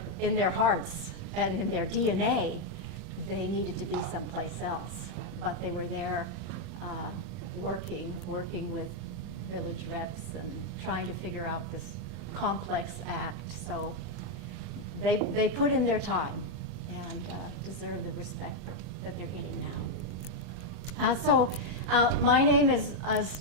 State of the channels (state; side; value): late; left; 40 ms